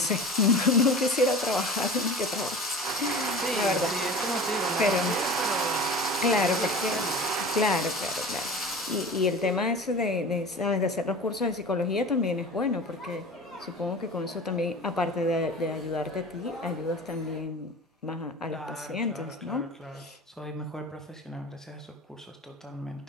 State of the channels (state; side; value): normal; both; correlation 0.36